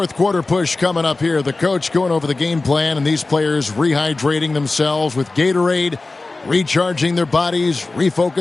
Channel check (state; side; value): quieter; right; 3.4 dB